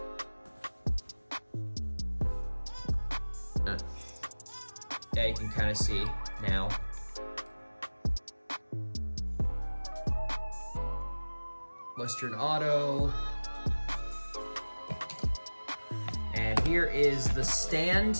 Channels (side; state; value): both; inverted; correlation -1.00